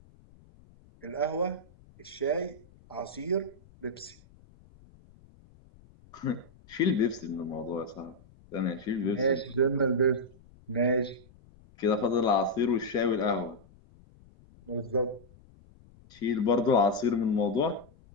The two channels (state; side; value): noise; left; rumble, 26 dB below the sound